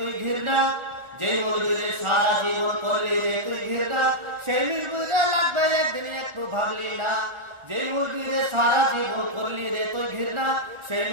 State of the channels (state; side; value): late; left; 1.4 ms